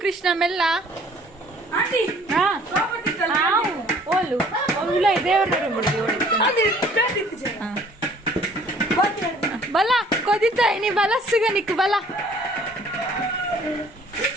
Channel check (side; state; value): both; normal; correlation 0.55